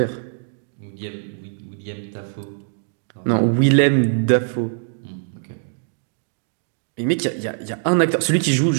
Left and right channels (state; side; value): silent; left; digital silence